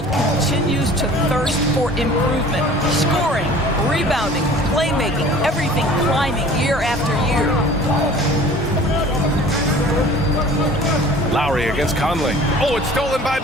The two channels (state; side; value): normal; both; correlation 0.46